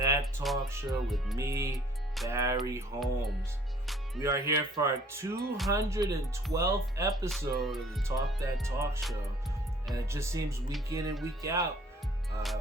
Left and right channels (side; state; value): both; normal; correlation 0.57